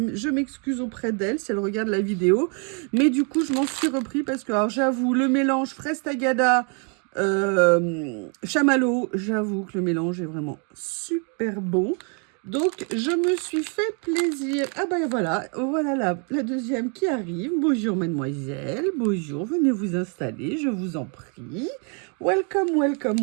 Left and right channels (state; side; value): quieter; left; 38.0 dB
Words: m'excuse auprès d'elle si elle regarde la vidéo. Mais du coup, je m'en suis repris parce que, alors, j'avoue, le mélange fraise tagada, chamallow, j'avoue que le mélange est vraiment super bon. Donc, je me suis fait plaisir. Ah ben voilà la deuxième qui arrive. Bonjour mademoiselle, bonjour, venez vous installer, je vous en prie. Welcome, welcome,